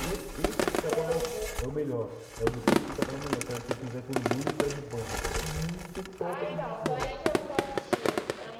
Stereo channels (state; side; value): identical; both; correlation 1.00